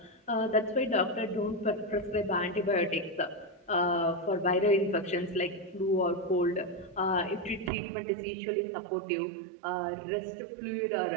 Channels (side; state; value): left; drops out; at 7.7 s